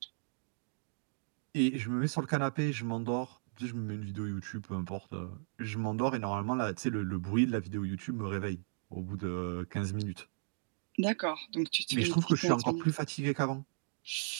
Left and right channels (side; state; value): left; silent; digital silence